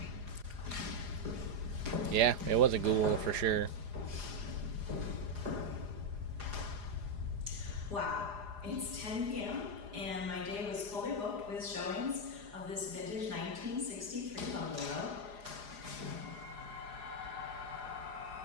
Yeah, it was a ghoul for sure. Wow, it's 10 p.m. and my day was fully booked with showings of this vintage 1963 bungalow.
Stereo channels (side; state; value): left; late; 4.9 ms